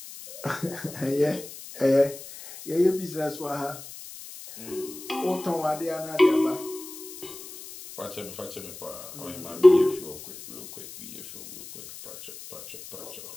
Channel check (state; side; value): noise; left; hiss, 14 dB below the sound